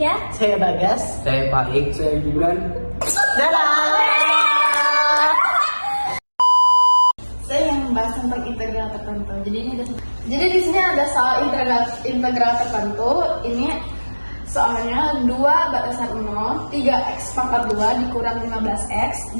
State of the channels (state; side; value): inverted; both; correlation -1.00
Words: Saya Bagas. Saya Faik. Saya Gibran. saya yang membahas tentang integral tertentu. Jadi di sini ada soal integral tertentu. Ini soalnya 2 batasan 0, 3x pangkat 2 dikurang 15x